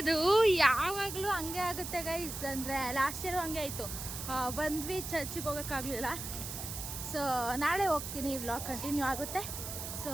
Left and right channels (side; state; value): right; noise; hiss, 7 dB below the sound